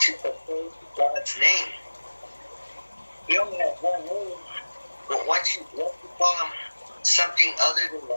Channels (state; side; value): inverted; both; correlation -1.00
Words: profane God's name. He only has one name, but once you call him something other than